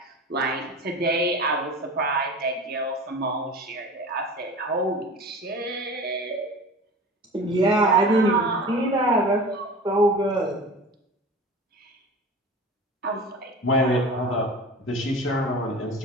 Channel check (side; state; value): both; normal; correlation 0.36